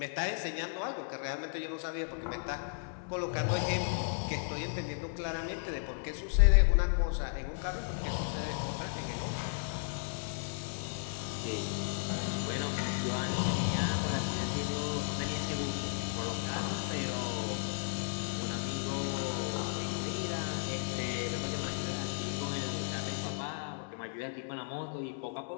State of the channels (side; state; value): right; silent; digital silence